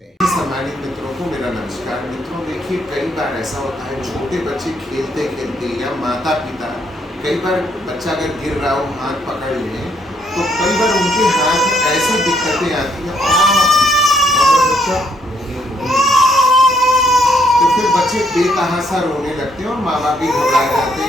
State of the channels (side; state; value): both; normal; correlation 0.71